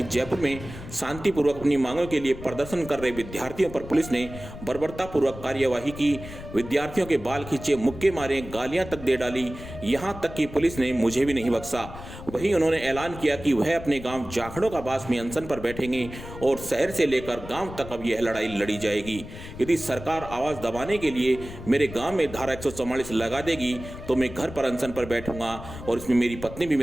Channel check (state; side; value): noise; left; rumble, 13 dB below the sound